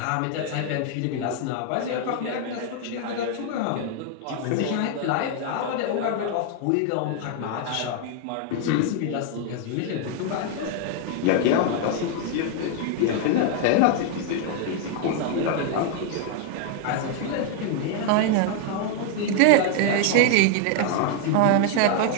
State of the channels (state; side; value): different; both; correlation 0.00